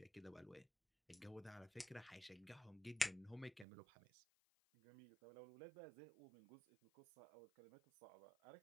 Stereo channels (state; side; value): drops out; left; at 3.7 s